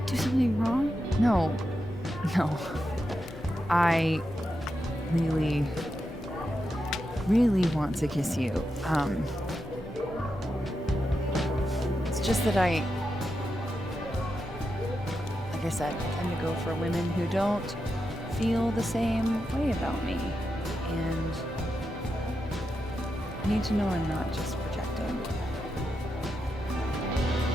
do something wrong? No. I really want to kiss you. It's just that like I said, I tend to go for women who don't feel the same way about me. And I need to know I'm not just projecting.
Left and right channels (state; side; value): normal; both; correlation 0.87